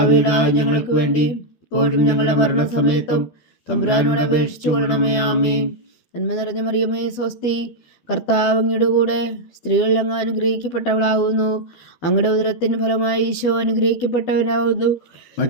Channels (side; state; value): right; late; 12 ms